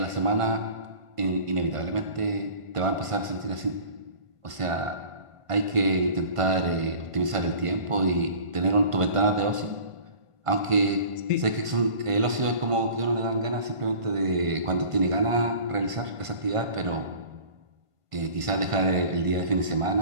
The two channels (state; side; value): late; left; 1.5 ms